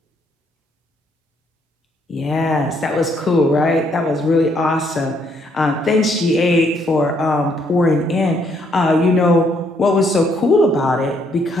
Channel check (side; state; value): both; normal; correlation 0.70